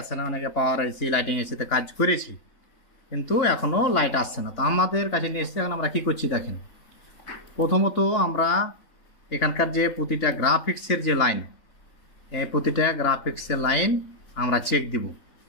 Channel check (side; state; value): right; late; 3.5 ms